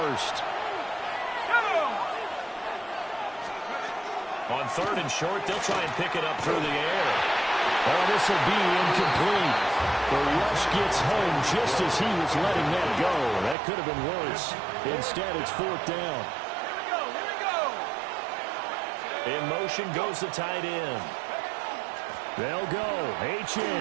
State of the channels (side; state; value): left; drops out; at 13.6 s